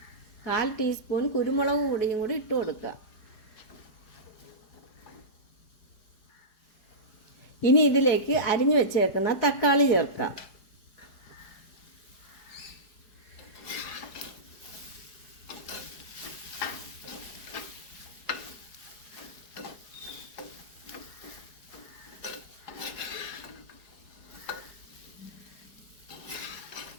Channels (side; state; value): right; late; 4.8 ms